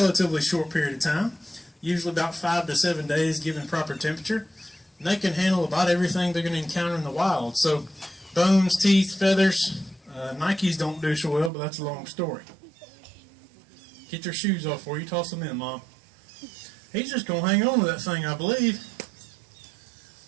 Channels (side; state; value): left; drops out; at 11.5 s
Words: short period of time, usually about 5 to 7 days given proper temperature. And they can handle about everything they're going to encounter in the wild. So bones, teeth, feathers, Nikes don't do so well, but that's a long story. Get their shoes off before you toss them in, Mom. He's just going to hang on to that thing, I believe.